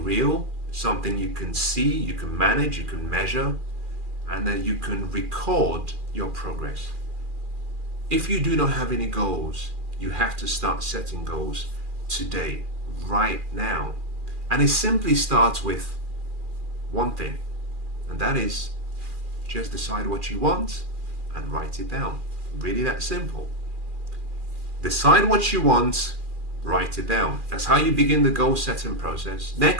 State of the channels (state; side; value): late; left; 2.4 ms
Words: real, something you can see, you can manage, you can measure, and then you can record your progress. If you do not have any goals, you have to start setting goals today, right now. And it simply starts with one thing, and that is just decide what you want and write it down. Really that simple. Decide what you want, write it down. That's how you begin the goal setting process.